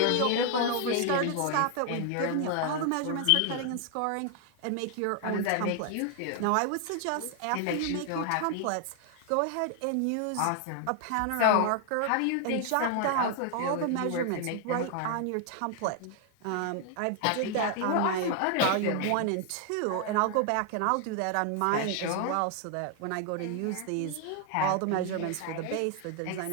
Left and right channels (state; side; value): different; both; correlation 0.00